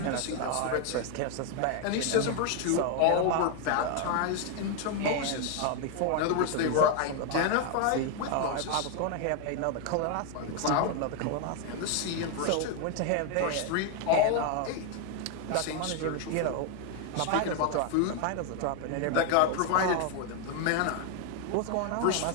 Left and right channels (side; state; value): both; different; correlation 0.01